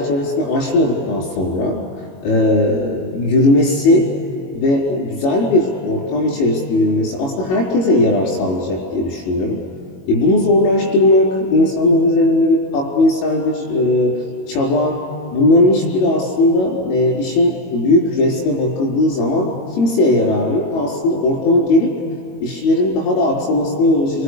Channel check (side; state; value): right; late; 22 ms